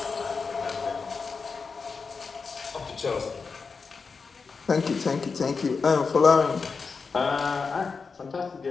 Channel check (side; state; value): right; quieter; 4.9 dB